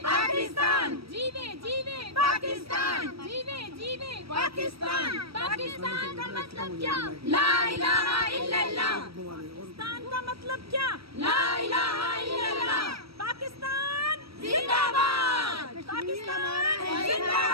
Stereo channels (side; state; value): left; late; 0.76 ms